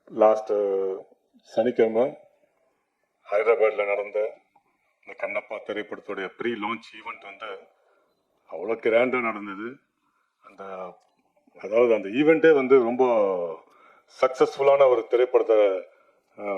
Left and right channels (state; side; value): identical; both; correlation 1.00